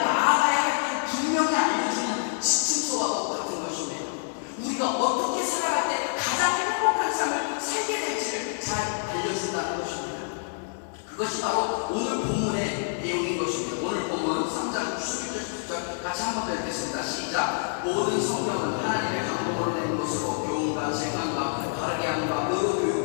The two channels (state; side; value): silent; right; digital silence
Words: 할 길을 분명히 알려주는 지침서와 같은 것입니다. 우리가 어떻게 살아갈 때 가장 행복한 삶을 살게 될지를 잘 알려준다는 것입니다. 그것이 바로 오늘 본문의 내용인 것입니다. 오늘 본문 3장 11절 10절 같이 한번 더 읽겠습니다. 시작. 모든 성경은 하나님의 감동으로 낸 것으로 교훈과 재판과 바르게 함과 의로